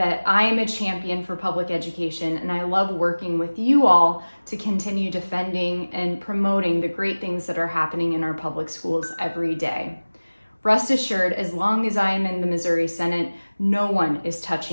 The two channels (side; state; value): both; inverted; correlation -1.00